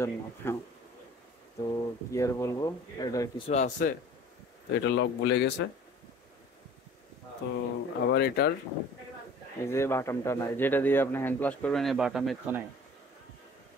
হ্যাঁ, তো কি আর বলবো, এটার কিছু আছে, তো এটা লক ভুলে গেছে। তো আবার এটার এই যে বাটামটা নাই, যেটা দিয়ে আপনি হ্যান্ড প্লাস করবেন, এই বাটামের তো নাই।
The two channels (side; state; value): both; normal; correlation 0.47